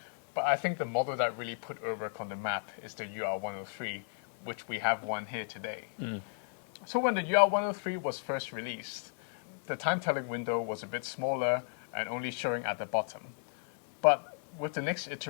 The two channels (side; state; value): right; silent; 55 dB below the other